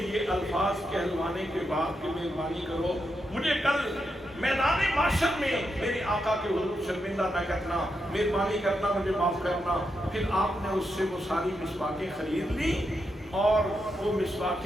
یہ الفاظ کہلوانے کے بعد کہ مہربانی کرو مجھے کل میدان محشر میں میرے آقا کے حضور شرمندہ نہ کرنا، مہربانی کرنا، مجھے معاف کرنا. پھر آپ نے اس سے وہ ساری مسواکیں خرید لی اور وہ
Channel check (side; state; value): both; normal; correlation 0.84